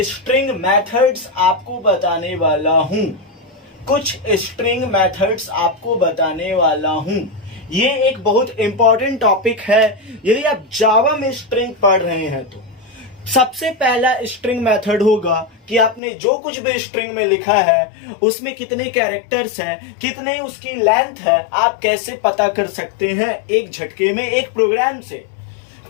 मेथड्स आपको बताने वाला हूं, कुछ स्ट्रिंग मेथड्स आपको बताने वाला हूं। ये एक बहुत इंपॉर्टेंट टॉपिक है यदि आप जावा में स्ट्रिंग पढ़ रहे हैं तो। सबसे पहला स्ट्रिंग मेथड होगा कि आपने जो कुछ भी स्ट्रिंग में लिखा है उसमें कितने कैरेक्टर्स हैं, कितने उसकी लेंथ है, आप कैसे पता कर सकते हैं एक झटके में, एक प्रोग्राम से।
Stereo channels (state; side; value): drops out; right; at 16.0 s